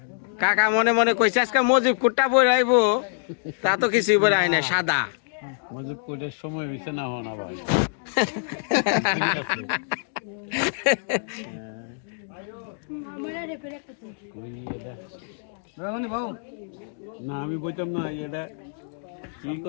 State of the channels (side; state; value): right; silent; digital silence